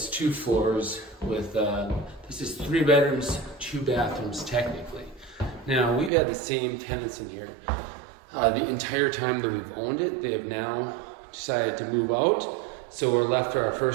2 floors with, this is 3 bedrooms, 2 bathrooms technically. Now, we've had the same tenants in here the entire time that we've owned it. They have now decided to move out. So we're left for our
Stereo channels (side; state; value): left; drops out; at 6.1 s